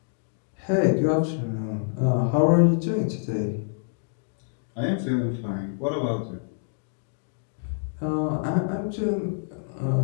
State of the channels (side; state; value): right; silent; digital silence